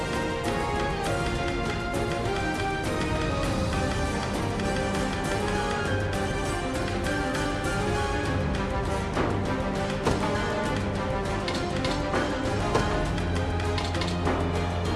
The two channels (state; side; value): identical; both; correlation 1.00